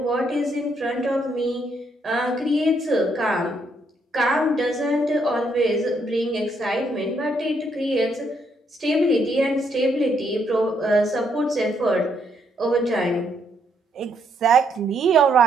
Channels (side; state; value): both; normal; correlation 0.74